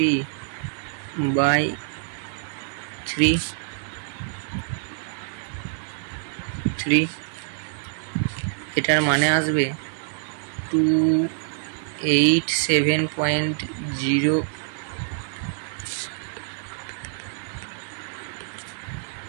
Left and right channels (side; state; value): left; silent; 61 dB below the other